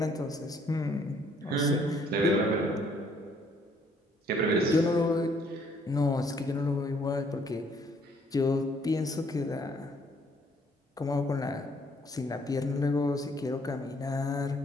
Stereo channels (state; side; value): normal; both; correlation 0.65